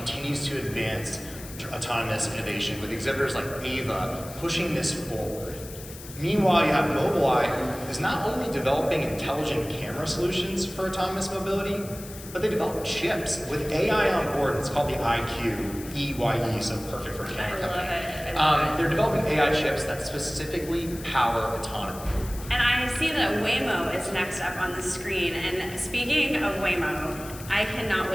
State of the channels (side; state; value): left; noise; hiss, 15 dB below the sound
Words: to advance autonomous innovation with exhibitors like Ava pushing this forward. Meanwhile, you have Mobileye, who is not only developing intelligent camera solutions for autonomous mobility, but they develop chips with AI on board. It's called the IQ, EYE, so perfect for a camera company. They're developing AI chips that specifically power autonomy. And I see that Waymo is next up on the screen. And speaking of Waymo, I cannot